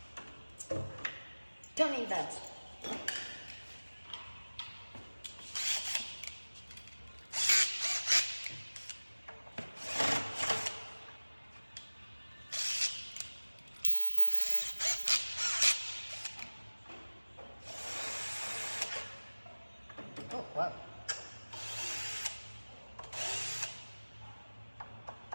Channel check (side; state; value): both; inverted; correlation -1.00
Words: Tell me that. Oh, wow.